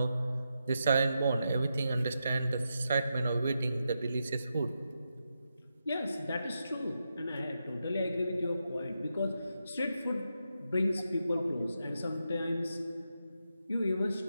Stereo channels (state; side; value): inverted; both; correlation -0.86